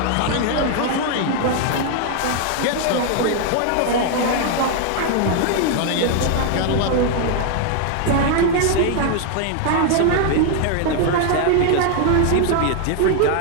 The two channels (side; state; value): both; different; correlation 0.00